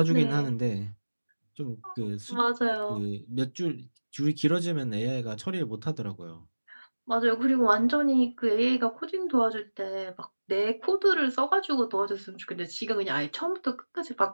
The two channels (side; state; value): both; inverted; correlation -1.00